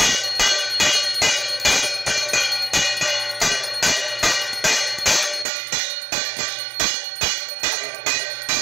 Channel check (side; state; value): left; drops out; at 5.5 s